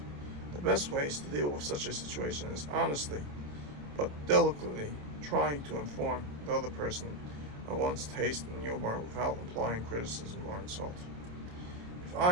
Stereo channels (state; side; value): late; left; 27 ms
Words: The best ways to deal with such a situation is honestly but delicately trying to inform the other person of one's taste in humor without implying criticism or insult. If